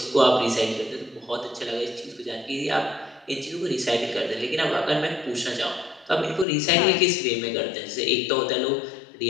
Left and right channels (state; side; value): drops out; right; at 6.5 s